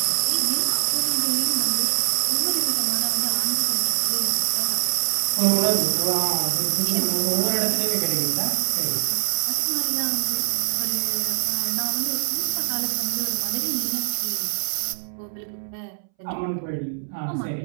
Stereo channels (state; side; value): silent; left; 63 dB below the other